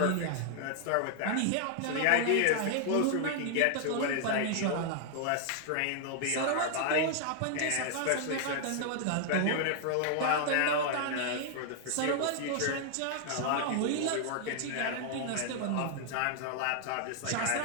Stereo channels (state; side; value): different; both; correlation 0.00